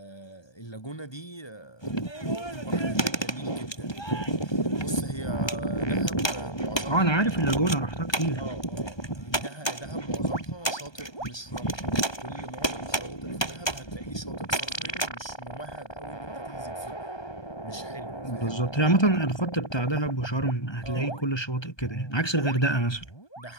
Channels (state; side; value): late; right; 1.2 ms